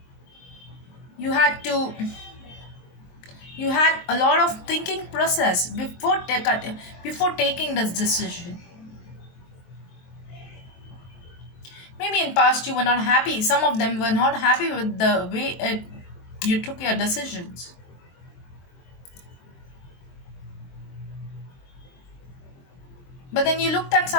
you had to you had a lot of thinking process before taking this decision. Maybe in past you were not happy, some of them were not happy with the way you took your decisions. But then you looked at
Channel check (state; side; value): late; right; 23 ms